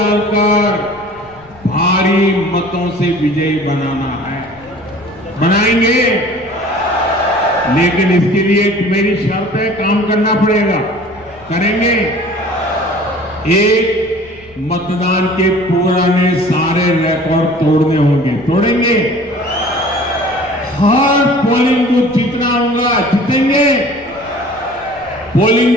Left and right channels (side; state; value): left; noise; rumble, 26 dB below the sound